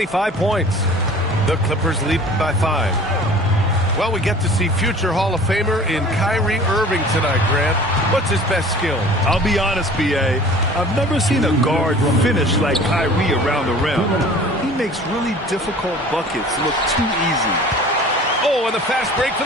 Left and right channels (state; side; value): normal; both; correlation 0.45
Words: points. The Clippers lead by 5. Well, we get to see future Hall of Famer in Kyrie Irving tonight, Grant. What's his best skill? I'll be honest, B.A. I've never seen a guard finish like Kyrie around the rim. He makes really difficult buckets look too easy. Oh, and the fast break for